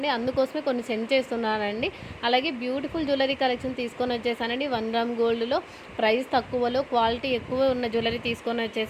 అందుకోసమే కొన్ని సెండ్ చేస్తున్నానండి. అలాగే బ్యూటిఫుల్ జ్యువెలరీ కలెక్షన్ తీసుకొని వచ్చేసానండి. 1 గ్రామ్ గోల్డ్లో ప్రైస్ తక్కువలో క్వాలిటీ ఎక్కువ ఉన్న జ్యువెలరీ తీసుకొని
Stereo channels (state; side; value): identical; both; correlation 1.00